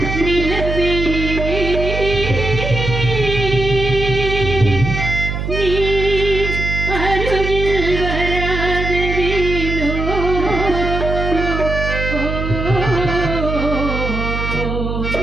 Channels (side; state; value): right; noise; hum, 3 dB below the sound